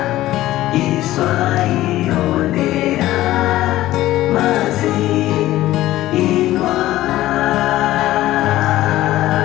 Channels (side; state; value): right; quieter; 15.4 dB